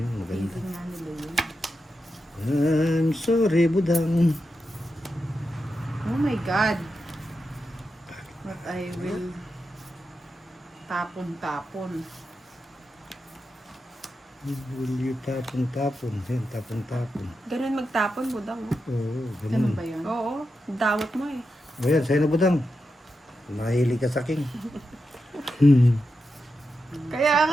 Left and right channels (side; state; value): both; normal; correlation 0.88